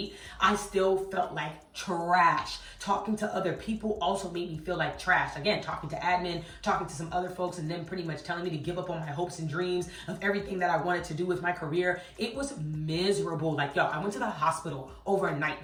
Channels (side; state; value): both; identical; correlation 1.00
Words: I still felt like trash. Talking to other people also made me feel like trash. Again, talking to admin, talking to some other folks, and them pretty much telling me to give up on my hopes and dreams of everything that I wanted to do with my career. It was miserable. Like, I went to the hospital overnight